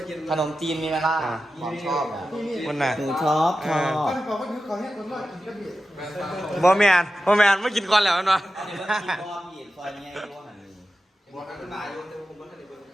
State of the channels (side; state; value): both; normal; correlation 0.92